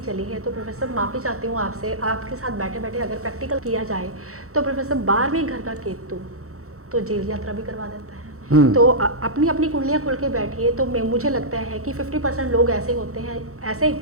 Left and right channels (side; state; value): left; late; 0.64 ms